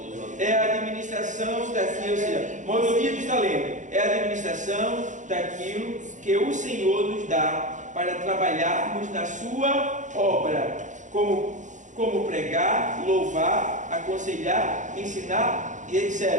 É a administração daquilo, ou seja, mordomia dos talentos, é a administração daquilo que o Senhor nos dá para trabalharmos na sua obra, como pregar, louvar, aconselhar, ensinar e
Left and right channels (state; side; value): late; left; 0.36 ms